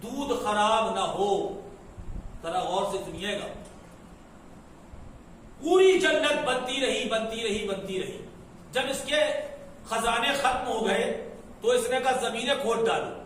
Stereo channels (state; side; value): identical; both; correlation 1.00